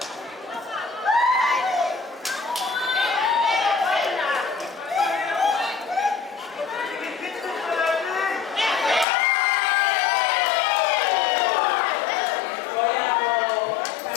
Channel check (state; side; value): drops out; right; at 9.1 s